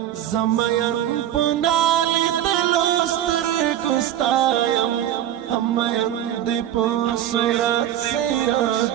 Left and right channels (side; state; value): left; quieter; 11.5 dB